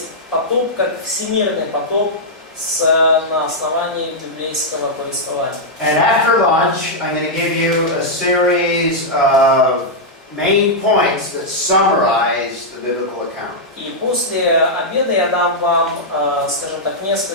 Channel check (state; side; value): normal; both; correlation -0.06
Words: потоп как всемирный потоп на основании библейского повествования. And after lunch, I'm going to give you a series of main points that summarize the biblical account. И после обеда я дам вам, скажем так,